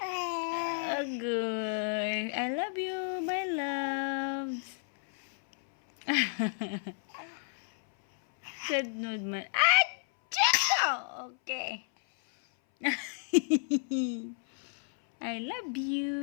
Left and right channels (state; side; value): silent; right; 57 dB below the other